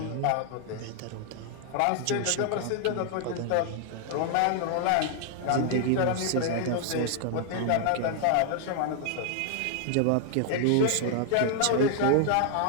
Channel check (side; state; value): both; different; correlation 0.00